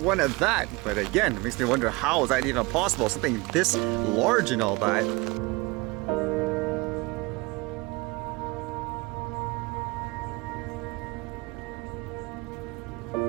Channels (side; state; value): left; quieter; 24.3 dB